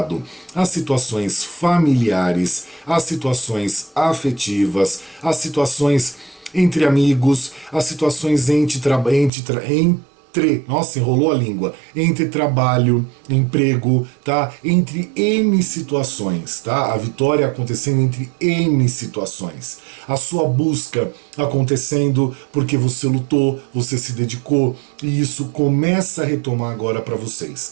às situações familiares, às situações afetivas, às situações entre amigos, às situações nossa, enrolou a língua, entre trabalho, emprego, tá? Entre N situações, tá? A vitória acontecendo entre N situações. A sua busca acontecendo porque você lutou, você se dedicou, e isso começa a retomar agora para vocês,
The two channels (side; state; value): left; drops out; at 9.3 s